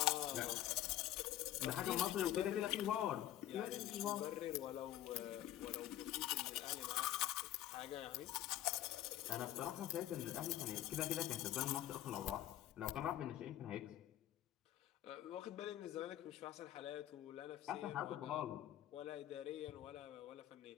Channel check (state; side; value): quieter; right; 13.0 dB